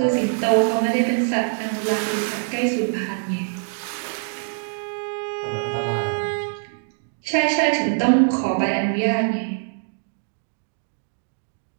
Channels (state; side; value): silent; left; digital silence